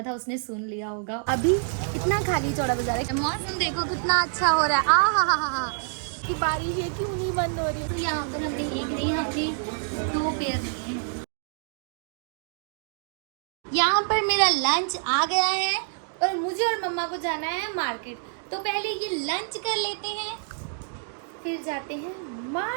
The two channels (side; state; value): left; silent; digital silence